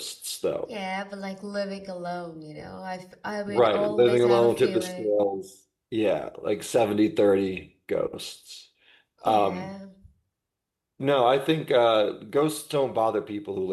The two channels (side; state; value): both; identical; correlation 1.00